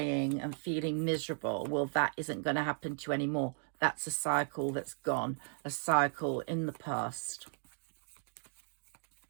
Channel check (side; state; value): left; silent; 54 dB below the other